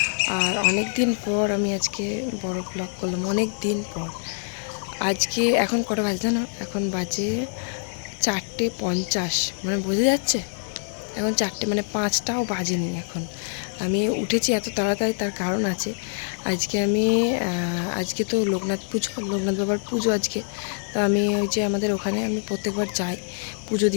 আর অনেক দিন পর আমি আজকে বড় ব্লগ করলাম, অনেক দিন পর। আজকে এখন কটা বাজে জানো? এখন বাজে 4:50, মানে বোঝা যাচ্ছে এখন 4টে, মানে 5টাও বাজেনি এখন। আমি উঠেছি এত তাড়াতাড়ি, তার কারণ আছে। আজকে তো লোকনাথ পুজো, লোকনাথ বাবার পুজো আজকে। তো আমি ওই যে আমাদের ওখানে আমি প্রত্যেকবার যাই পুজো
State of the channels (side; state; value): right; silent; digital silence